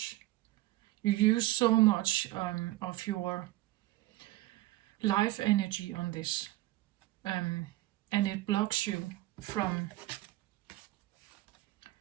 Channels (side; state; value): left; quieter; 17.4 dB